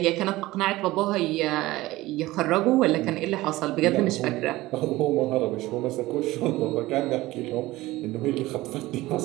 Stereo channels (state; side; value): quieter; left; 18.3 dB